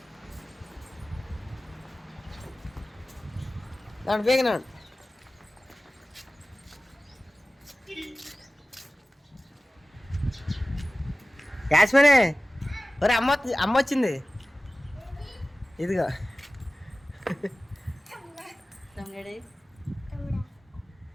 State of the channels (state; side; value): normal; both; correlation 0.97